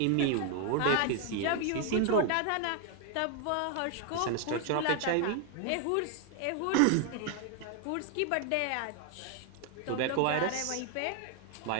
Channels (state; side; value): different; both; correlation 0.00